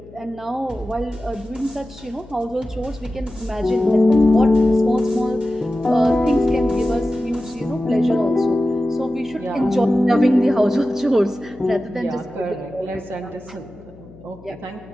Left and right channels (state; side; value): noise; left; hum, 21 dB below the sound